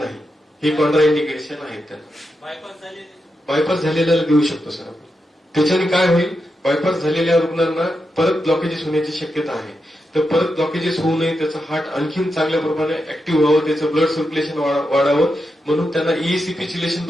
हे कॉन्ट्राइंडिकेशन आहेत त्यांना. बायपास झालेल्याला देऊ शकतो सर आपण. त्याच्याने काय होईल, बायपास झालेल्या रुग्णांना परत ब्लॉकेजेस होण्याची शक्यता आहे. तर परत ब्लॉकेजेस होऊ नये, त्याचं हार्ट आणखीन चांगल्या प्रमाणे ऍक्टिव्ह व्हावं, त्याचं ब्लड सर्क्युलेशन वाढावं, म्हणून त्यांना ईसीपी चिलेशन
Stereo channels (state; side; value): normal; both; correlation 0.87